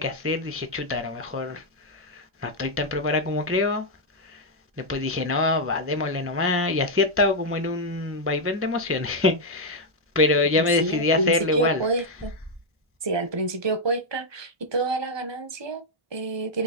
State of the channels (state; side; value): late; left; 1.2 ms